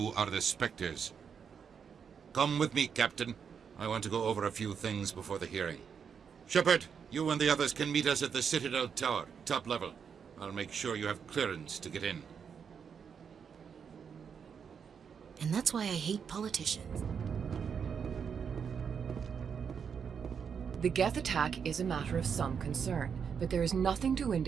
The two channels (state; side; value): quieter; left; 6.9 dB